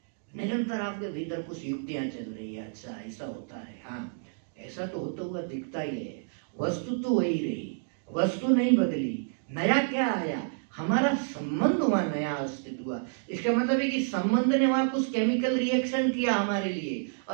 निरंतर आपके भीतर कुछ युक्तियां चल रही है, अच्छा ऐसा होता है, हाँ ऐसा तो होता हुआ दिखता ही है, वस्तु तो वही रही, वस्तु नहीं बदली, नया क्या आया, हमारा संबंध हुआ, नया अस्तित्व हुआ। इसका मतलब है कि संबंध ने वहां कुछ केमिकल रिएक्शन किया हमारे लिए,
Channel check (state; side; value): silent; left; digital silence